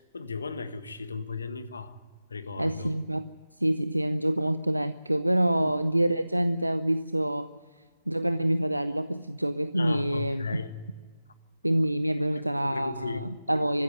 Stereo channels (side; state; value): both; inverted; correlation -0.95